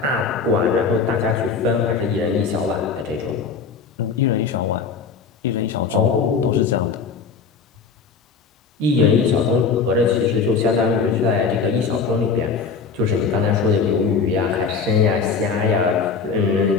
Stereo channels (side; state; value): right; quieter; 5.3 dB